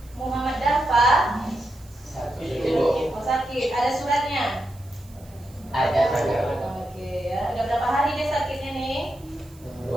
Muhammad Dafa. Oh, sakit. Ada suratnya? Ada. Oke ya. Udah berapa hari dia sakitnya nih?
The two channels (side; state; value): right; noise; hiss, 26 dB below the sound